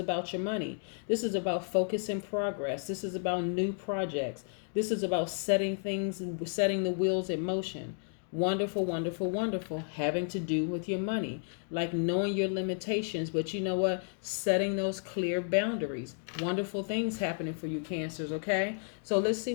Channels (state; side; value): silent; right; 56 dB below the other